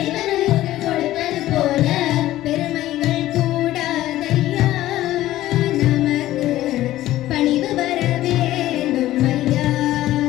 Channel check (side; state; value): right; quieter; 14.9 dB